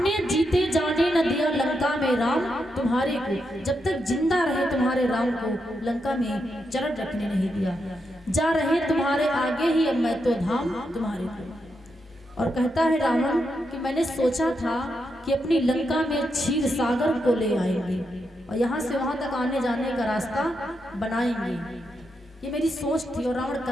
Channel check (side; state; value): both; normal; correlation 0.83